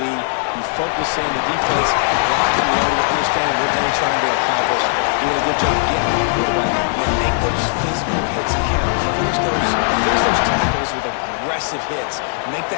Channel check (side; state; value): right; silent; digital silence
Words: You focus in the defense, lock and load, understand what they're trying to accomplish, doing a good job getting the quarterback, and then make those physical hits count. Finish those tackles with aggressive hits. Make